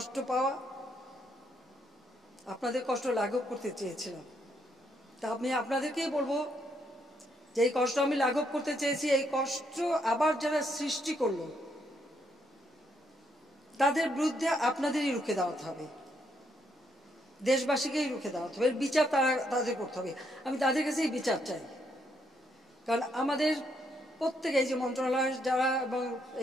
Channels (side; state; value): both; normal; correlation 0.75